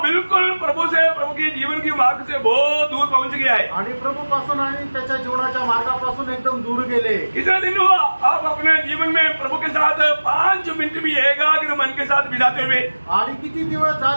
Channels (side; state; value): both; inverted; correlation -1.00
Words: बिल्कुल प्रभु की जीवन की मार्ग से बहुत दूर पहुंच गया है. आणि प्रभू पासून आणि त्याच्या जीवनाच्या मार्गापासून एकदम दूर गेले. कितना दिन हुआ आप अपने जीवन में प्रभु के साथ 5 मिनट भी एकाग्र मन के साथ बिताते हुए? आणि किती दिवस